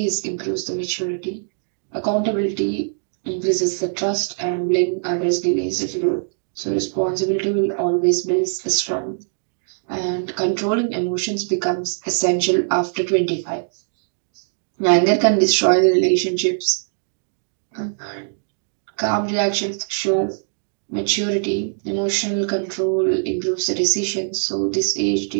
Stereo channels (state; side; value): silent; left; digital silence